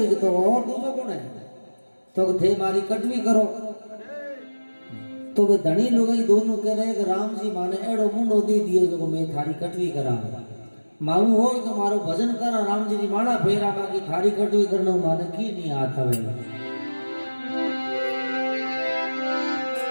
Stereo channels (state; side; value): inverted; both; correlation -1.00